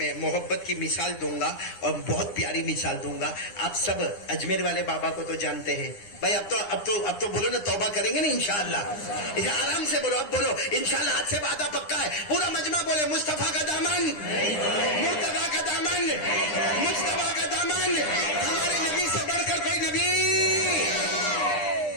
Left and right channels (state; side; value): late; right; 9.9 ms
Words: محبت کی مثال دوں گا اور بہت پیاری مثال دوں گا. آپ سب اجمیر والے بابا کو تو جانتے ہیں بھائی. اب تو بولو نا توبہ کریں گے نا انشاءاللہ. آرام سے بولو، اب بولو انشاءاللہ. ہاتھ سے وعدہ پکا ہے. پورا مجمع بولے مصطفیٰ کا دامن، مرتضیٰ کا دامن، مجتبیٰ کا دامن، ہمارے نبی سے بڑھ کر کوئی نبی.